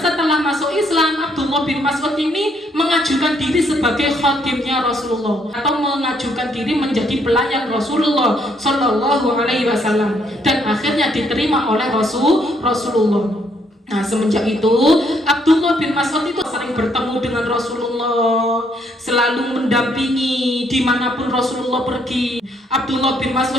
setelah masuk Islam, Abdullah bin Mas'ud ini mengajukan diri sebagai khadimnya Rasulullah, atau mengajukan diri menjadi pelayan Rasulullah Sallallahu Alaihi Wasallam, dan akhirnya diterima oleh Rasulullah. Nah semenjak itu Abdullah bin Mas'ud itu sering bertemu dengan Rasulullah, selalu mendampingi dimanapun Rasulullah pergi. Abdullah bin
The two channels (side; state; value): both; normal; correlation 0.70